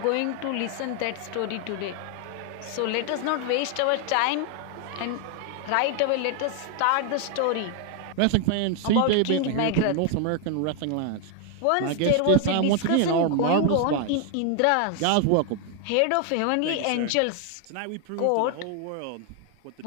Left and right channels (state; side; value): different; both; correlation 0.00